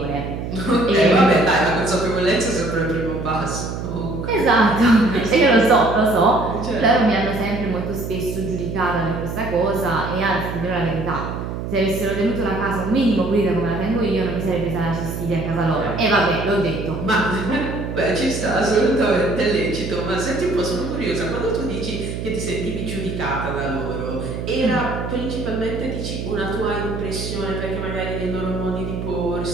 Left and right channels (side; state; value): right; noise; hum, 6 dB below the sound